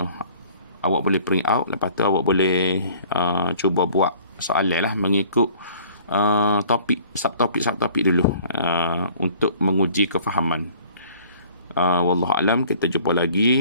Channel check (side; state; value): both; inverted; correlation -0.52